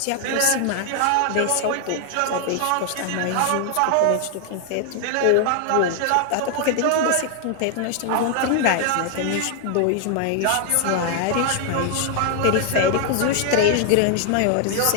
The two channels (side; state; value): both; different; correlation 0.00